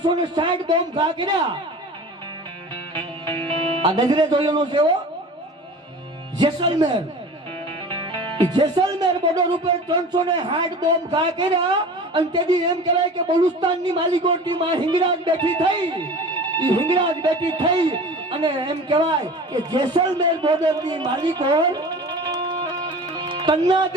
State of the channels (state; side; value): normal; both; correlation 0.38